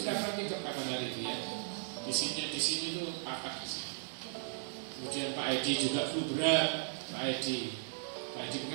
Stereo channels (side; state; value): left; silent; digital silence